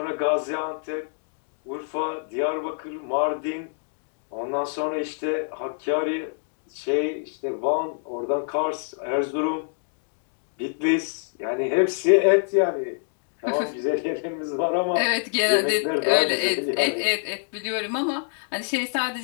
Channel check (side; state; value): right; silent; digital silence